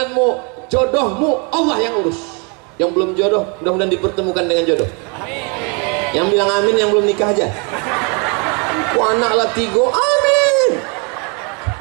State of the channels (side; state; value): left; quieter; 34.2 dB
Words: jodohmu Allah yang urus. Yang belum jodoh mudah-mudahan dipertemukan dengan jodoh. Amin. Yang bilang amin yang belum nikah aja. Anak lah 3, amin.